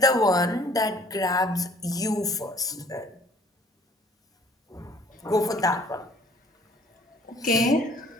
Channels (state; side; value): normal; both; correlation 0.56